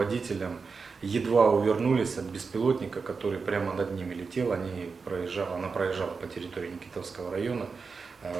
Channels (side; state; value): left; quieter; 4.9 dB